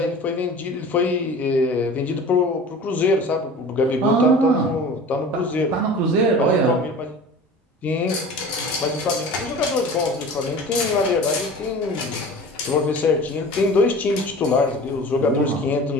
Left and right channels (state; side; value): normal; both; correlation 0.39